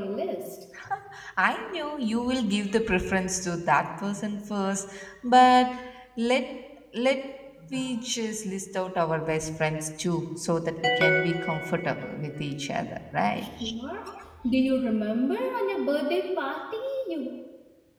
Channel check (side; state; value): both; identical; correlation 1.00